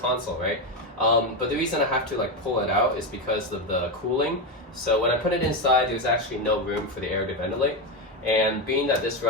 right? But the reason I have to like pull it out is because of the cooling. So when I put it inside, there's actually no room for the air to ventilate. And being that this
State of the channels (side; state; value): both; normal; correlation 0.12